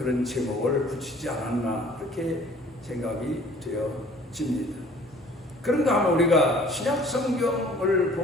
제목을 붙이지 않았나 그렇게 생각이 되어집니다. 그런가 하면 우리가 신약 성경을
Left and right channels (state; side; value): normal; both; correlation 0.53